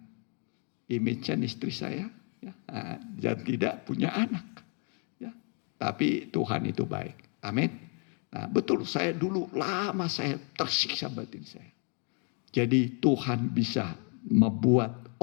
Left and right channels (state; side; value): quieter; right; 38.1 dB